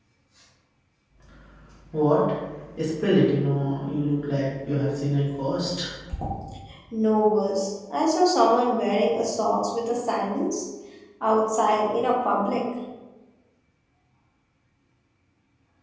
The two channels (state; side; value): identical; both; correlation 1.00